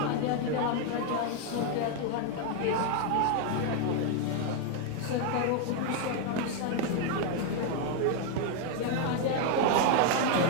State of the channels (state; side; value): different; both; correlation 0.01